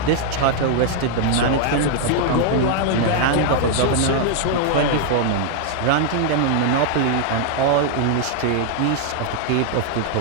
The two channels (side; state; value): both; different; correlation -0.01